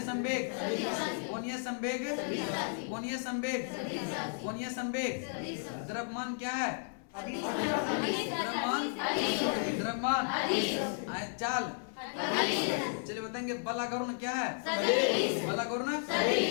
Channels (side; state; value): right; silent; 55 dB below the other